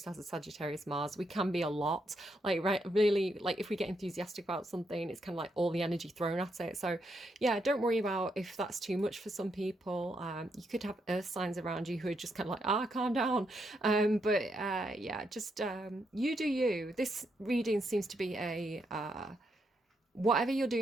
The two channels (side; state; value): both; normal; correlation 0.79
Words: has a Sagittarius Mars. We can be a lot. Like right really like if we get enthusiastic about something, it's kind of like all the energy thrown at it. So yeah, don't worry about if that's too much for some people. You could have earth signs around you who are just kind of like, calm down. Yeah, just you do you. This reading seems to be a whatever you're